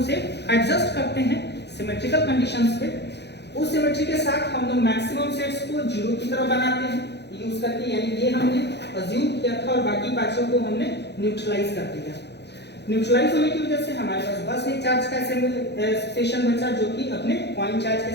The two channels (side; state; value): right; late; 0.49 ms